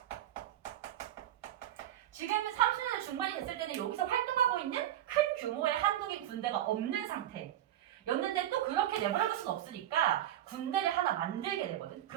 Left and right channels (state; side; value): quieter; left; 12.3 dB